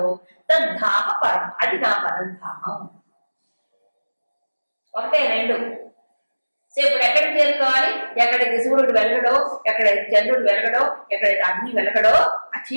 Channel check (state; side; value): inverted; both; correlation -1.00